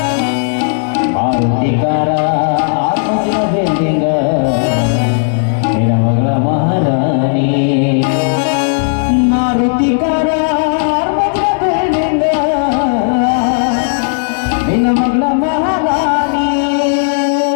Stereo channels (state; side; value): silent; right; digital silence